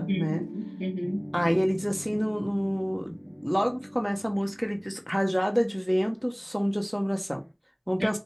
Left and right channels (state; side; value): identical; both; correlation 1.00